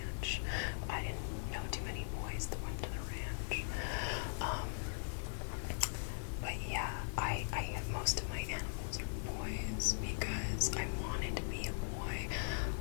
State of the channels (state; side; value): silent; right; digital silence